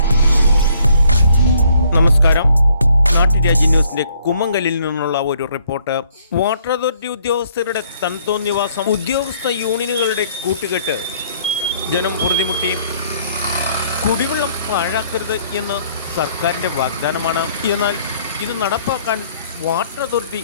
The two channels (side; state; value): both; inverted; correlation -0.64